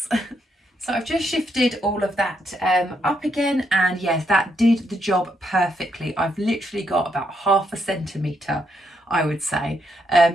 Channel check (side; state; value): both; normal; correlation 0.77